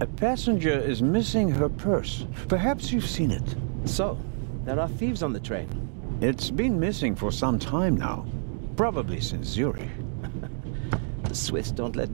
A passenger is missing her purse. Perhaps you've seen it. So, there are thieves on the train. It's been missing for some time now. Probably since Zurich. The Swiss don't let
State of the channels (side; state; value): left; silent; digital silence